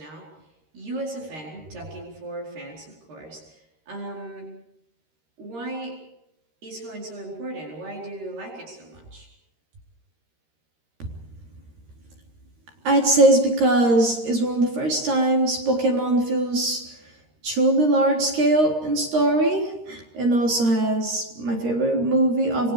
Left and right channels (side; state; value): left; late; 13 ms